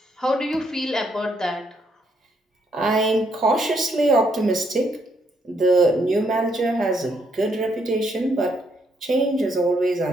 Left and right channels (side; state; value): both; normal; correlation 0.73